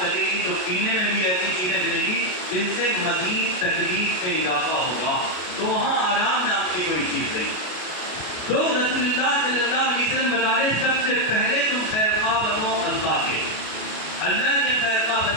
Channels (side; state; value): right; late; 33 ms